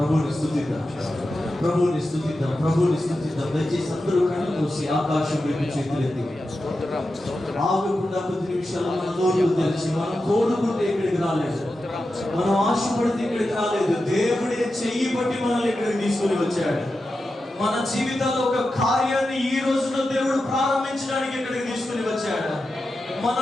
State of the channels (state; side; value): normal; both; correlation 0.91